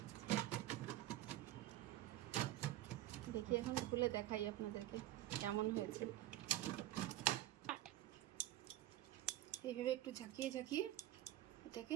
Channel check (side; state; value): left; quieter; 14.5 dB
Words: দেখি এখন খুলে দেখাই আপনাদেরকে কেমন হয়েছে। এইভাবে একটু ঝাঁকিয়ে ঝাঁকিয়ে এটাকে